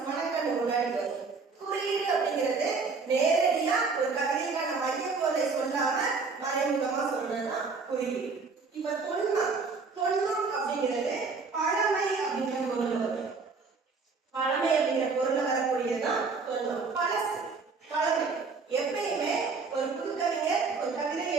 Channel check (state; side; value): quieter; left; 4.5 dB